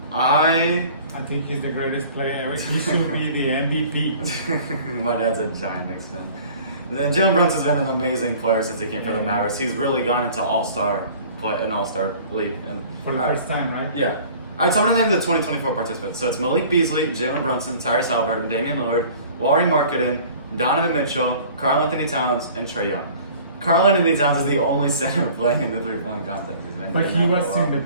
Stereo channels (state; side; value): inverted; both; correlation -0.48